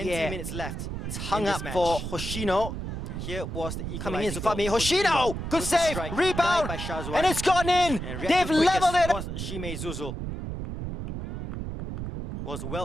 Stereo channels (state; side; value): noise; right; rumble, 6 dB below the sound